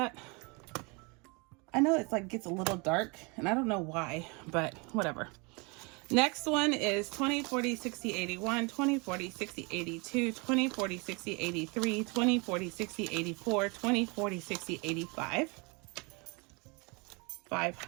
I know it's like gets a little dark and I don't know why, but whatever. Next one is 20, 40, 60, 81, 20, 40, 60, 82, 20, 40, 60, 83, 20, 40, 60, 84, 20, 40, 60, 85.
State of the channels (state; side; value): quieter; left; 29.7 dB